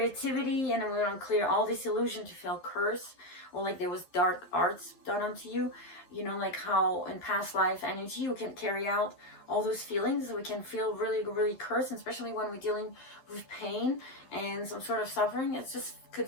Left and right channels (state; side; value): late; right; 11 ms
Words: and then we're going to clear all this illusion to feel curse, or like there was dark arts done onto you. Like how in past life energy you can carry out all those feelings. We can feel really, really cursed, especially when we're dealing with pain and some sort of suffering. It just could